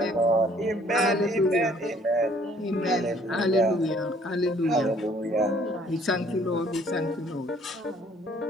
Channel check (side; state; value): both; normal; correlation 0.60